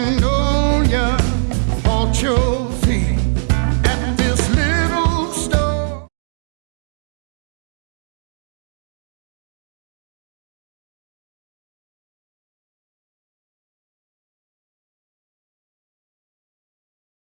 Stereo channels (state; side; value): silent; left; digital silence